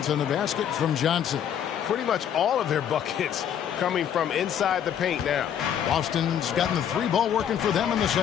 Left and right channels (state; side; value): quieter; right; 9.2 dB